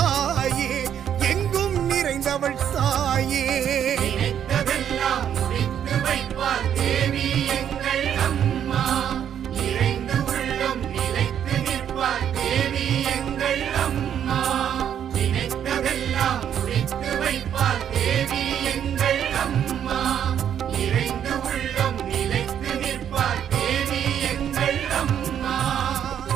எங்கும் நிறைந்தவள் தாயே நினைத்ததெல்லாம் முடித்து வைப்பார் தேவி எங்கள் அம்மா நிறைந்து உள்ளம் நிலைத்து நிற்பார் தேவி எங்கள் அம்மா நினைத்ததெல்லாம் முடித்து வைப்பார் தேவி எங்கள் அம்மா நிறைந்து உள்ளம் நிலைத்து நிற்பார் தேவி எங்கள் அம்மா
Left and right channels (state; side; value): quieter; left; 9.3 dB